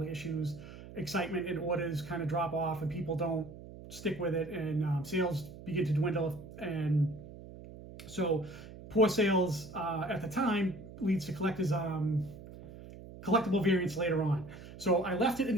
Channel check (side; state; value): right; noise; hum, 15 dB below the sound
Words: of issues, excitement and orders kind of drop off and people don't stick with it, and sales begin to dwindle. And so poor sales at the time leads to collectible variants later on. So I left it in